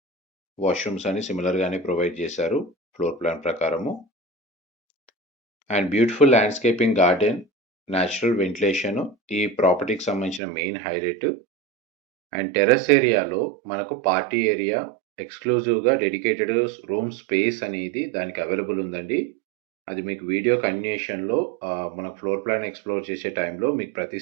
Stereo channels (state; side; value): drops out; left; at 10.4 s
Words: వాష్రూమ్స్ అని సిమిలర్గానే ప్రొవైడ్ చేశారు ఫ్లోర్ ప్లాన్ ప్రకారము. And beautiful landscaping garden, natural ventilation ఈ ప్రాపర్టీకి సంబంధించిన మెయిన్ హైలైట్. అండ్ టెర్రస్ ఏరియాలో మనకు పార్టీ ఏరియా ఎక్స్క్లూజివ్గా డెడికేటెడ్ రూమ్ స్పేస్ అనేది దానికి అవైలబుల్ ఉందండి. అది మీకు వీడియో కంటిన్యూషన్లో మనకు ఫ్లోర్ ప్లాన్ ఎక్స్ప్లోర్ చేసే టైంలో మీకు ప్రతి